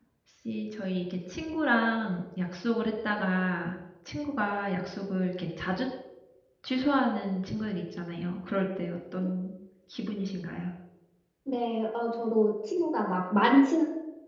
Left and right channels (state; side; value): identical; both; correlation 1.00